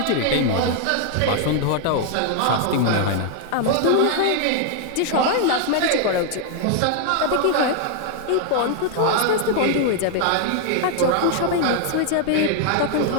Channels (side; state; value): both; different; correlation 0.00